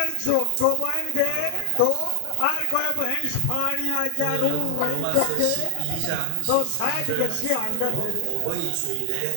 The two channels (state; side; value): different; both; correlation 0.00